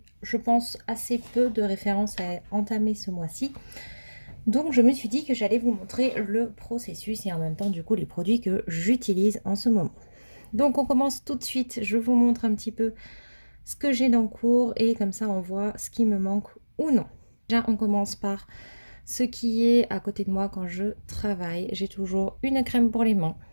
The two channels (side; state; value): both; inverted; correlation -1.00